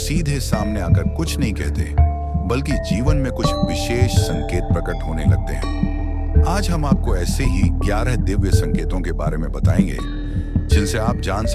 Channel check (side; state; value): both; identical; correlation 1.00